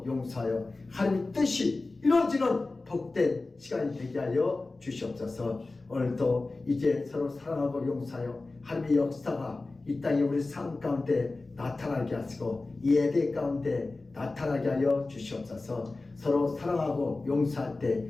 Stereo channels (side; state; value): right; quieter; 3.4 dB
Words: 용서하여 하나님의 뜻이 이루어지는 복된 시간이 되게 하여 주시옵소서. 오늘도 이제 서로 사랑하고 용서하여 하나님의 역사가 이 땅에 우리 삶 가운데 나타나게 하시고 이 예배 가운데 나타나게 하여 주시옵소서. 서로 사랑하고 용서할